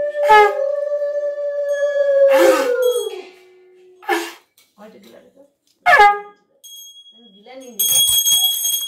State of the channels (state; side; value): identical; both; correlation 1.00